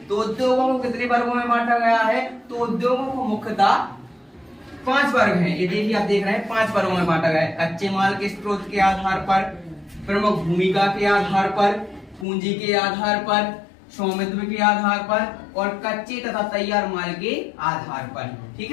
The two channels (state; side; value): drops out; right; at 12.2 s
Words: तो उद्योगों को कितने वर्गों में बांटा गया है? तो उद्योगों को मुख्यतः 5 वर्ग हैं। ये देखिए, आप देख रहे हैं 5 वर्गों में बांटा गया है। कच्चे माल के स्रोत के आधार पर, प्रमुख भूमिका के आधार पर, पूंजी के आधार पर, स्वामित्व के आधार पर और कच्चे तथा तैयार माल के आधार पर। ठीक